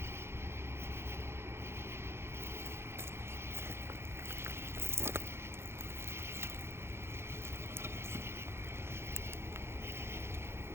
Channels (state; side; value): late; left; 0.12 ms